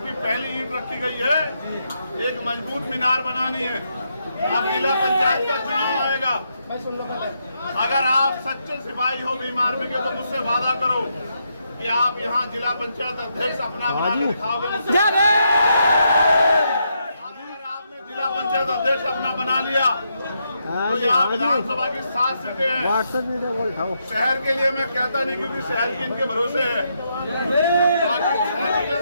पहली ईंट रखी गई है, एक मजबूत मीनार बनानी है। अब जिला पंचायत का चुनाव आएगा। अगर आप सच्चे सिपाही हो भीम आर्मी के तो मुझसे वादा करो कि आप यहाँ जिला पंचायत अध्यक्ष अपना बना के दिखाओगे मुझसे। अगर आपने जिला पंचायत अध्यक्ष अपना बना लिया तो यहाँ विधानसभा की 7 सीटें हैं। शहर के लिए मैं कहता नहीं, क्योंकि शहर की इनके भरोसे है।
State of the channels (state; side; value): inverted; both; correlation -0.79